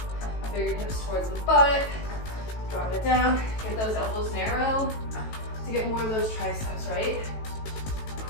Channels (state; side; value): late; right; 18 ms